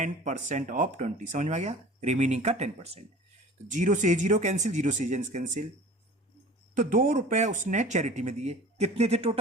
ऑफ 20, समझ में आ गया, रिमेनिंग का 10%। तो 0 से 0 कैंसिल, 0 से कैंसिल, तो ₹2 उसने चैरिटी में दिए, कितने थे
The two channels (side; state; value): both; normal; correlation 0.42